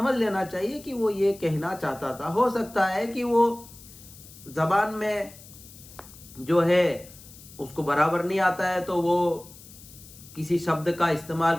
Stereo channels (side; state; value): left; noise; hiss, 19 dB below the sound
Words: लेना चाहिए कि वो ये कहना चाहता था। हो सकता है कि वो ज़बान में जो है उसको बराबर नहीं आता है, तो वो किसी शब्द का